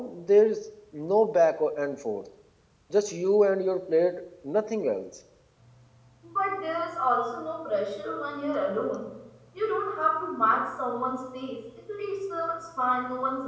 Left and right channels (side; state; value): both; identical; correlation 1.00